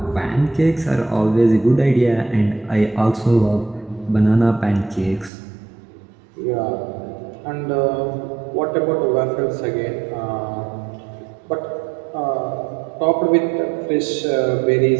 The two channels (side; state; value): left; drops out; at 5.3 s